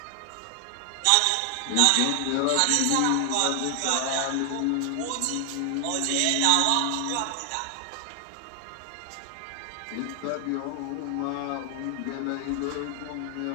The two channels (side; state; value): both; different; correlation 0.00